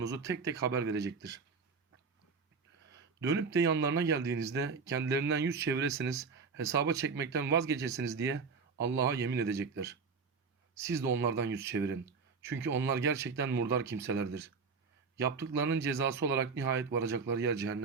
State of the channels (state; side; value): quieter; left; 5.0 dB